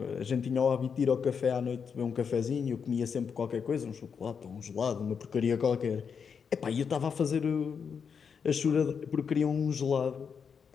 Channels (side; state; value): right; quieter; 6.5 dB